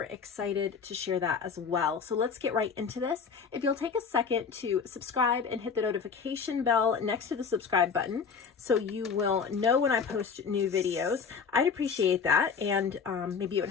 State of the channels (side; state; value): right; quieter; 5.9 dB